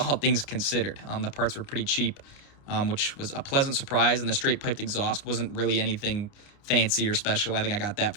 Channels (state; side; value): late; right; 30 ms